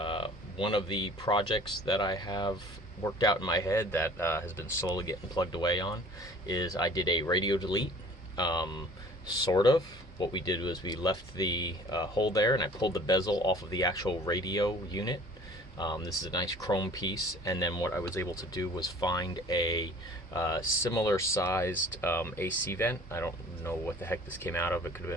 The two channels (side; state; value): both; normal; correlation 0.49